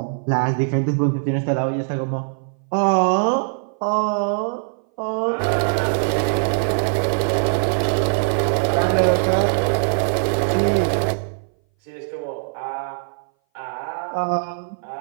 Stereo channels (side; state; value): left; silent; 60 dB below the other